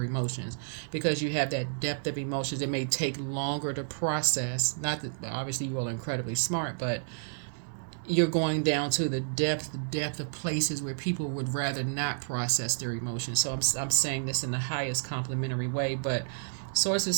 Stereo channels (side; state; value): left; silent; digital silence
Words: emotions. Because you have that depth of emotions, it may take longer to process. Not that obviously you all are incredibly smart, but you're going down to the depth of places where people would rather not process their emotions. So I'm saying this in the highest complimentary way, but Source is